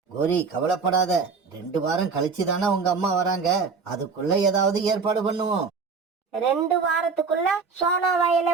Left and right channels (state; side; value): quieter; left; 5.0 dB